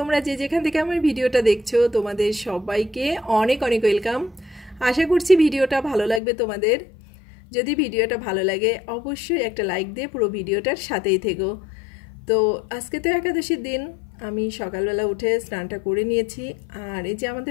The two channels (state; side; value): drops out; right; at 6.2 s